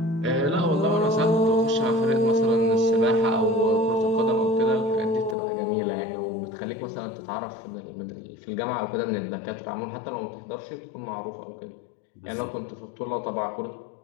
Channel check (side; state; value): right; drops out; at 5.4 s